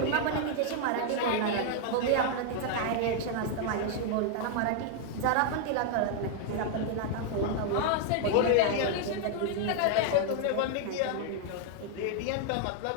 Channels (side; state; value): both; different; correlation 0.00